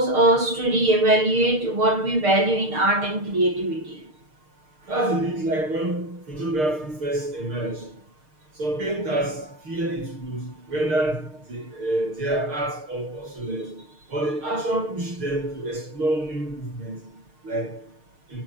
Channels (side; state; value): left; late; 6.5 ms